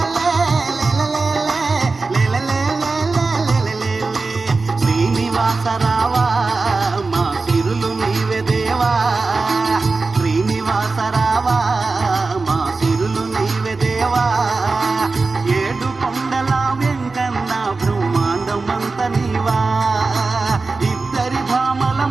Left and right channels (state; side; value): quieter; left; 3.9 dB